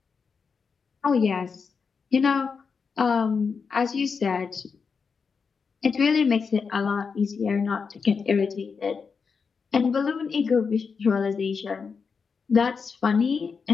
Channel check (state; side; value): quieter; right; 5.5 dB